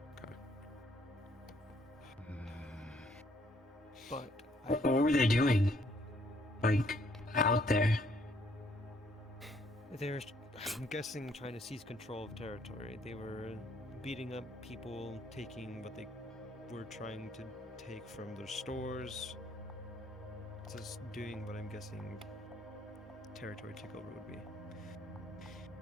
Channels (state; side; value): normal; both; correlation 0.67